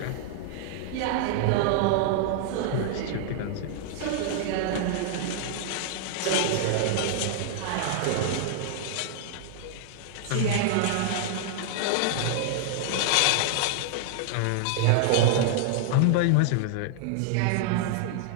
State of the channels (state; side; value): different; both; correlation -0.01